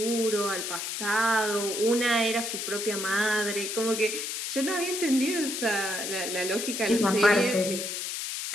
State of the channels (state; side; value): noise; left; hiss, 4 dB below the sound